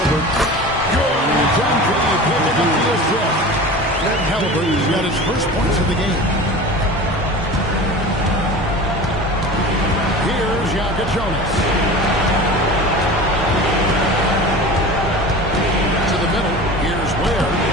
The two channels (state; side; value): normal; both; correlation 0.35